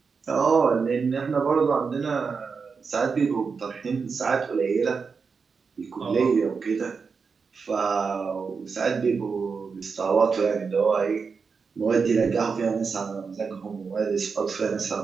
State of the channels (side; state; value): left; quieter; 5.3 dB